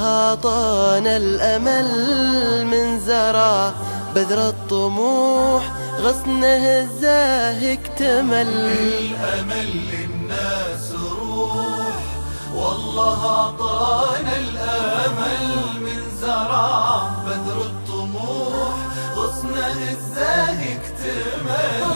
أعطانا الأمل من زرع بذر الطموح، غصنه الزاهي اكتمل. الأمل للناس روح، والله أعطانا الأمل من زرع بذر الطموح، غصنه الزاهي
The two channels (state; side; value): inverted; both; correlation -1.00